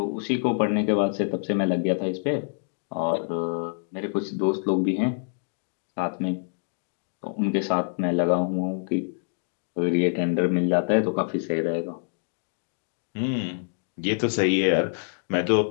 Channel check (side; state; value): right; silent; digital silence